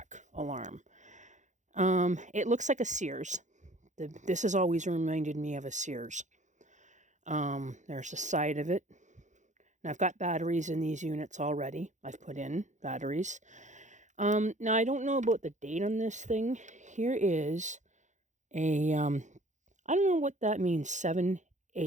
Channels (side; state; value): left; late; 0.35 ms